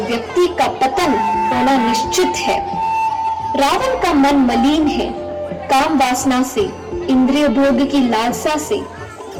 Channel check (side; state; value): both; identical; correlation 1.00